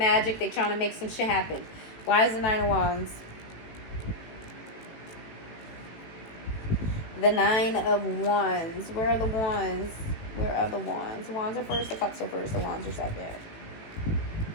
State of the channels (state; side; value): late; right; 18 ms